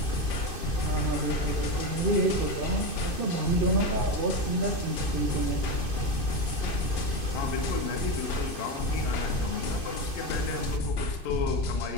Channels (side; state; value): right; late; 2.6 ms